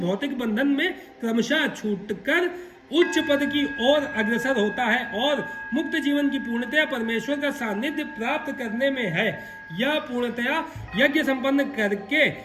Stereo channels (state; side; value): identical; both; correlation 1.00